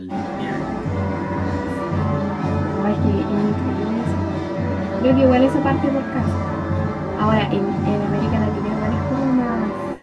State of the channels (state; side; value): identical; both; correlation 1.00